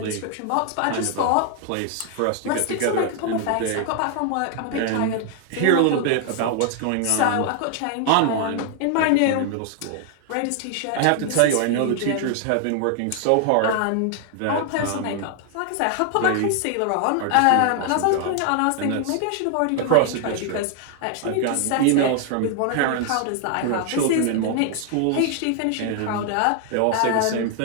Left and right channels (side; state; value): both; different; correlation 0.00